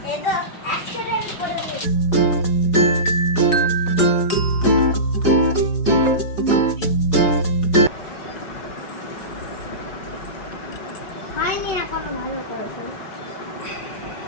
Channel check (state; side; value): late; right; 5.4 ms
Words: এটা অ্যাক্সিডেন্ট করে দিয়েছে। হয়নি এখনো ভালো করেছে।